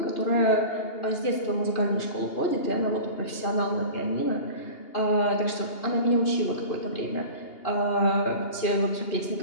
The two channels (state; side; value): late; right; 2.8 ms